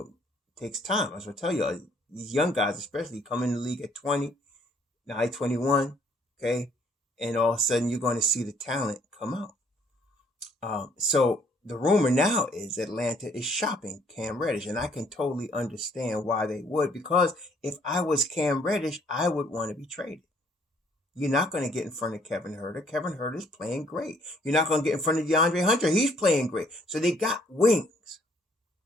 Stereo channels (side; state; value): both; normal; correlation 0.63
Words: takes time. As I tell you, these young guys especially come in the league at 20, now 21, okay? And all of a sudden you're going to see the talent come out. So the rumor now is Atlanta is shopping Cam Reddish, and I can totally understand why they would, because if I was Cam Reddish, I would want to be traded. You're not going to get in front of Kevin Huerter. Kevin Huerter is playing great. You're not going to get in front of DeAndre Hunter. He's playing great. So they got wings